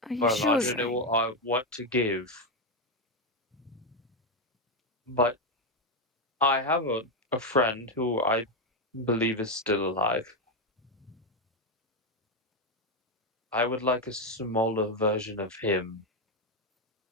Are you Well, sure? I don't know what to give, but I have a friend who I believe is still alive. I would like a smaller version of him,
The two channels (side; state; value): both; normal; correlation 0.07